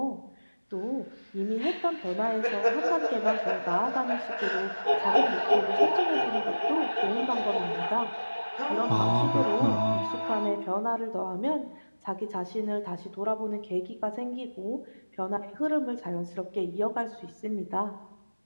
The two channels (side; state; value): both; inverted; correlation -1.00